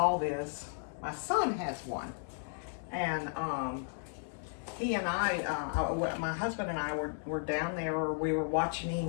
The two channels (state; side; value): silent; right; 55 dB below the other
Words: this, my son has one, and he and I, my husband and I were down there, or we were watching